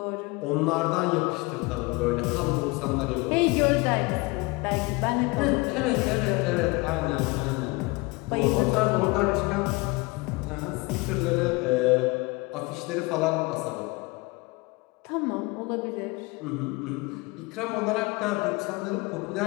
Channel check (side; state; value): right; quieter; 25.6 dB